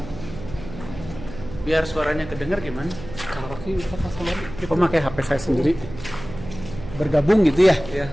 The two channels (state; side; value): noise; right; hum, 13 dB below the sound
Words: Biar suaranya kedengar gimana? Kang Rocky bisa sama Kita pakai HP saya sendiri. Bergabung gitu ya? ya.